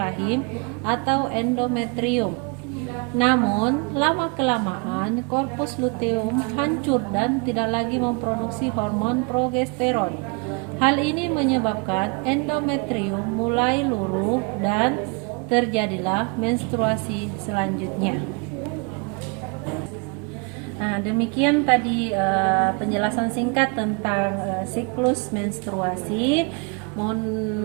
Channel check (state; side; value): quieter; left; 33.3 dB